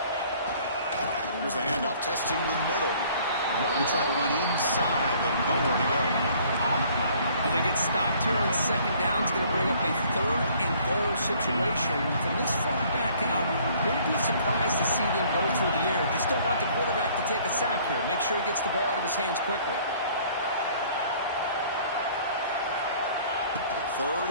Here's the handoff, testing the middle. They try to run inside, but nowhere to go. Well, they get stopped here on second down. It's going to bring up a third and goal situation. From this far back out, wouldn't be surprised to see them go through the air. Just don't want the quarterback to take a sack here. Make sure he gets the ball out of his hands quickly. Third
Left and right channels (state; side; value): inverted; both; correlation -0.57